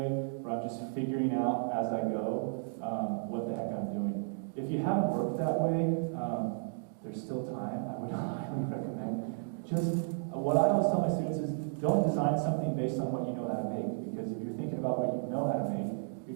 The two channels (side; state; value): left; silent; digital silence